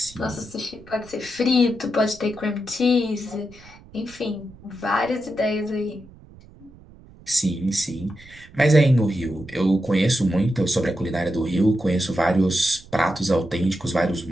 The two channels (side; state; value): right; noise; rumble, 22 dB below the sound